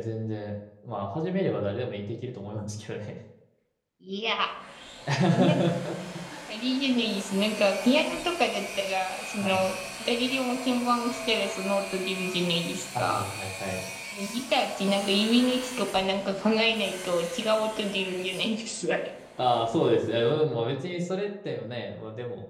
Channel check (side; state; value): both; identical; correlation 1.00